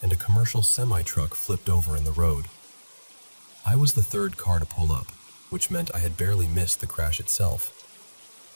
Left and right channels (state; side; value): inverted; both; correlation -1.00